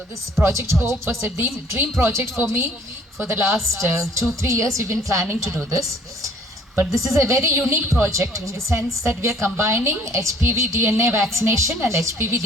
this project HOPE was a dream project for me. For the last 2-3 years, we've been planning to do this. But this is a very unique project in the sense that we are combining HPV DNA vaccination and HPV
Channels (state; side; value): normal; both; correlation 0.57